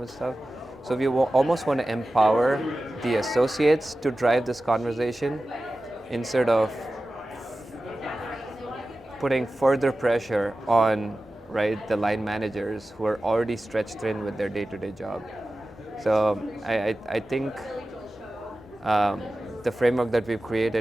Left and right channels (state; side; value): normal; both; correlation 0.95